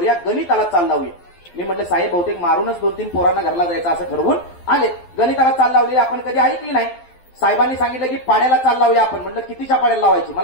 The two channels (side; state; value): right; late; 12 ms